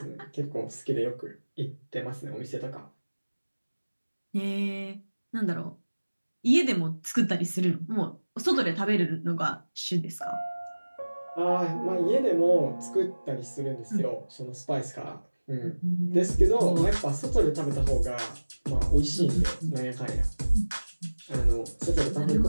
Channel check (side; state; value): both; inverted; correlation -1.00